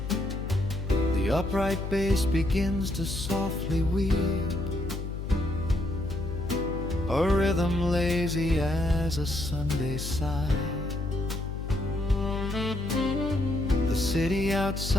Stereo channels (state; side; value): noise; left; hum, 5 dB below the sound